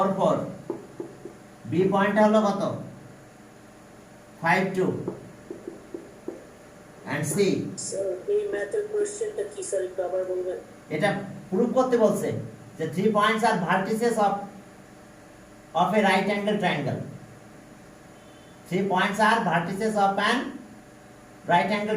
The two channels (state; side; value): identical; both; correlation 1.00